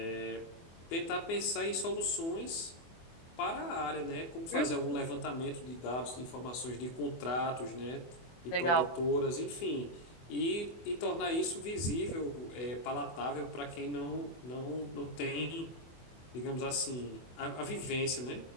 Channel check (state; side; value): late; right; 24 ms